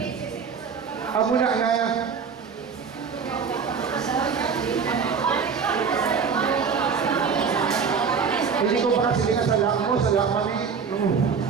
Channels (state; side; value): quieter; left; 6.0 dB